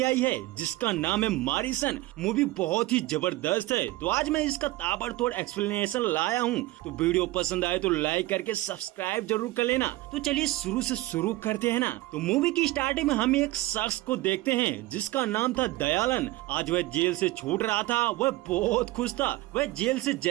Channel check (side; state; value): left; quieter; 18.5 dB